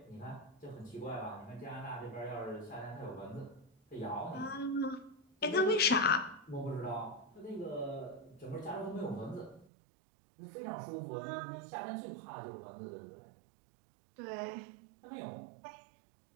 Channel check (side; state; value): left; drops out; at 9.7 s